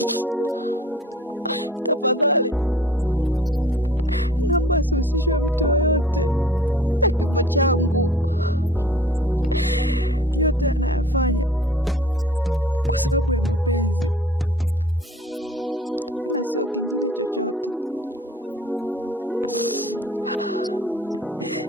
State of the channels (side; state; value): both; normal; correlation 0.50